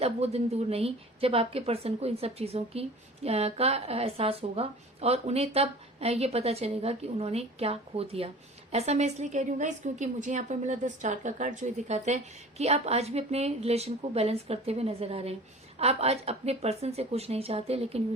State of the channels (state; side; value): normal; both; correlation 0.42